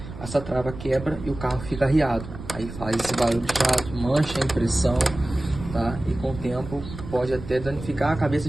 Essa trava quebra e o carro fica arriado, aí faz esse barulho chato, mancha a impressão, tá? E com o tempo pode até danificar a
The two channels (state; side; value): noise; right; rumble, 12 dB below the sound